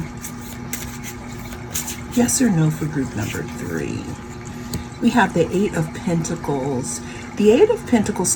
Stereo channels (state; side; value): identical; both; correlation 1.00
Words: Yes or no for group number 3. We have the 8 of Pentacles. The 8 of Pentacles